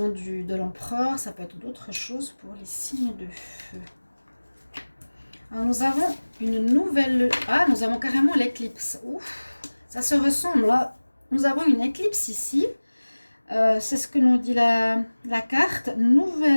de l'empereur, ça peut être d'autres choses pour les signes de feu. Alors, nous avons une nouvelle... Ah, nous avons carrément l'éclipse. Ouf, ça se ressemble, là. Nous avons une éclipse ici. C'est ce que nous dit la carte.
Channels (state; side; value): inverted; both; correlation -1.00